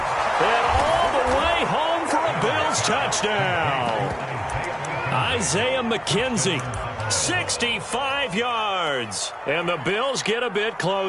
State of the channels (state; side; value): identical; both; correlation 1.00